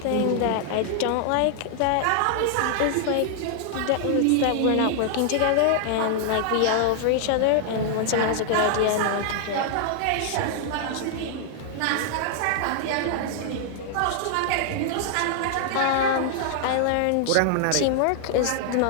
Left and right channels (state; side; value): different; both; correlation 0.00